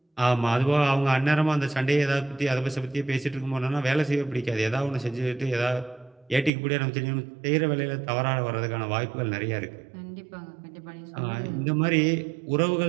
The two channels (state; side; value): drops out; left; at 6.5 s